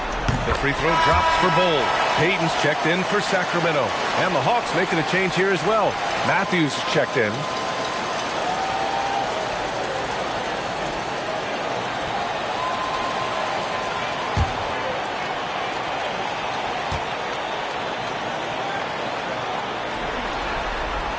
Free throw drops for Bull. Payton's checked in for Sacramento. And the Hawks making a change here as well. Matthews checked in.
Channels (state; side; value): identical; both; correlation 1.00